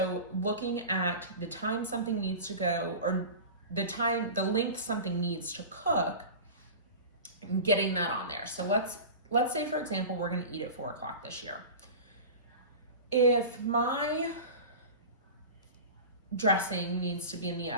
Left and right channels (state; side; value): inverted; both; correlation -0.32